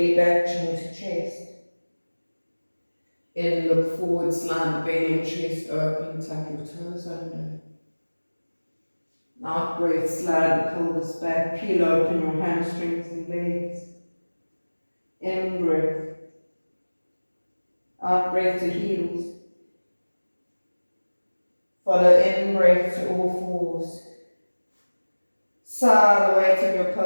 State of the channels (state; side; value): inverted; both; correlation -1.00